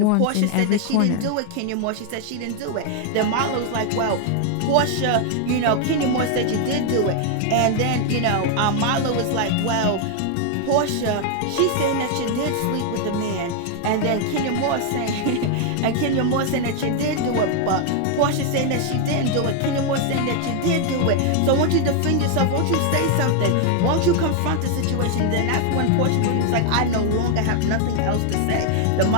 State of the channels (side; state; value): both; different; correlation 0.00